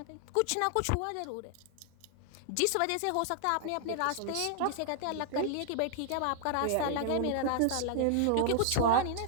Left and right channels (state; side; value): different; both; correlation 0.00